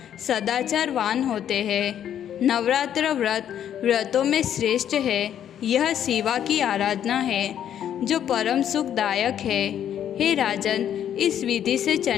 सदाचारवान होते हैं। नवरात्र व्रत व्रतों में श्रेष्ठ है। यह शिवा की आराधना है जो परम सुखदायक है। हे राजन, इस विधि से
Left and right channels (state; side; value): quieter; right; 9.9 dB